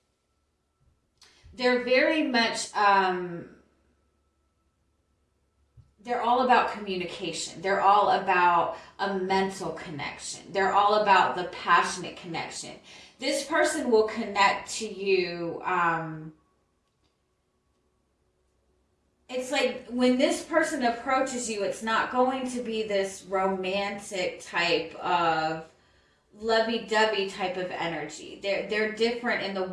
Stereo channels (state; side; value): identical; both; correlation 1.00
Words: They're very much. They're all about communication. They're all about a mental connection. They're all about the passionate connection. This person will connect to you. It's like when this person approaches you, it's not going to be this romantic type of lovey-dovey type of energy. They're different in the